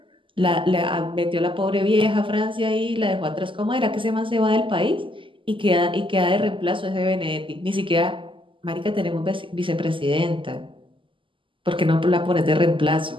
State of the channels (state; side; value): late; left; 0.25 ms